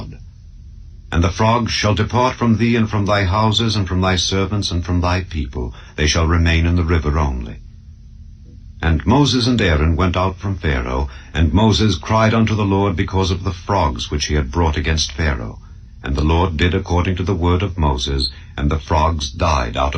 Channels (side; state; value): both; identical; correlation 1.00